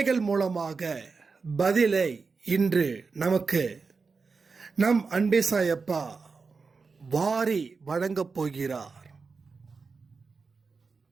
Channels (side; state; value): left; quieter; 4.6 dB